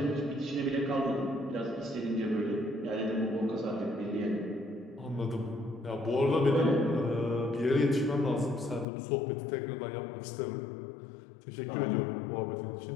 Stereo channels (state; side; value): drops out; right; at 8.8 s